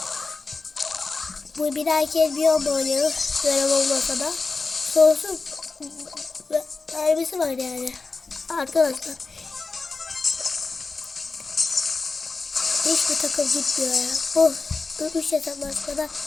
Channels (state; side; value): quieter; right; 4.0 dB